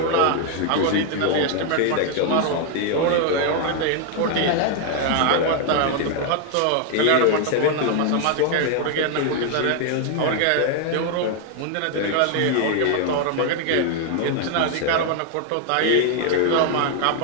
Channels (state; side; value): different; both; correlation 0.00